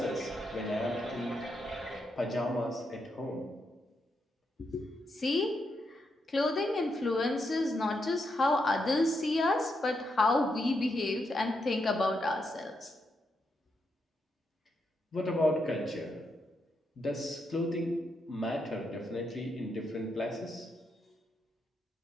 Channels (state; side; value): normal; both; correlation 0.82